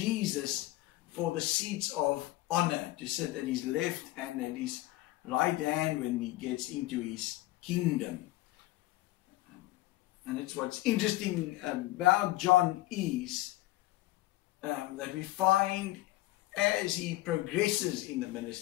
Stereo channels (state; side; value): quieter; right; 17.5 dB